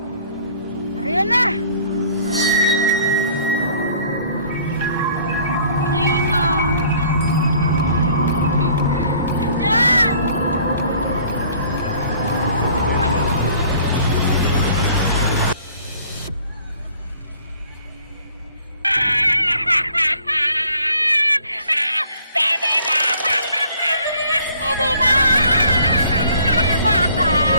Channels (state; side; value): inverted; both; correlation -0.56